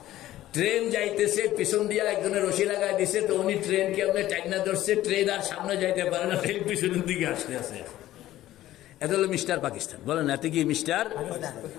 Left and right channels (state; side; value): quieter; right; 14.4 dB